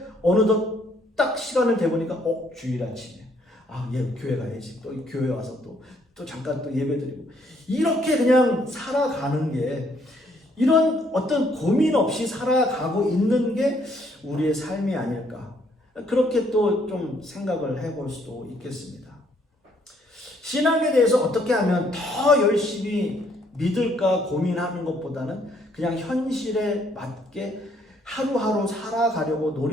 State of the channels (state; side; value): normal; both; correlation 0.67